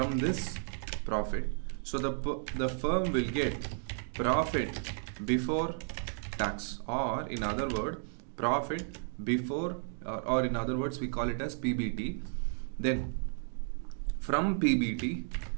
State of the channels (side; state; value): left; silent; 56 dB below the other